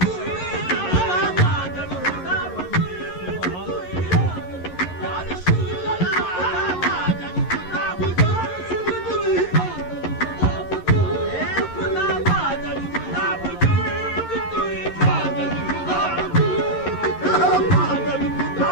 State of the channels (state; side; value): late; right; 11 ms